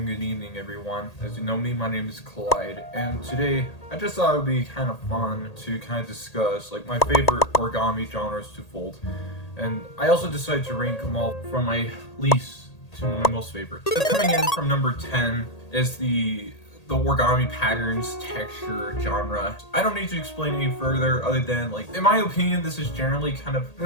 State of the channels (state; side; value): late; right; 1.8 ms